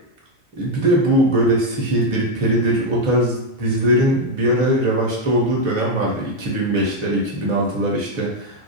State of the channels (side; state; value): left; late; 3.0 ms